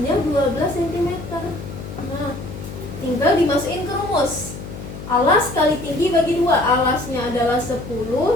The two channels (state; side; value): noise; left; hum, 11 dB below the sound